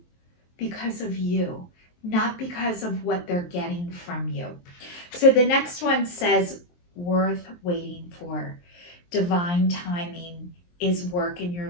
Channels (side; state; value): right; late; 23 ms